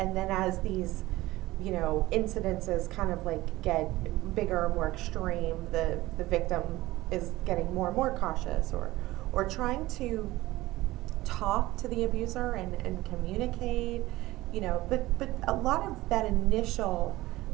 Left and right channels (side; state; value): left; quieter; 18.0 dB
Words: as these incidences kind of like get bigger, more extreme, the victim is getting more and more cautious or trying to talk to the abuser and communicate, but a lot of that initial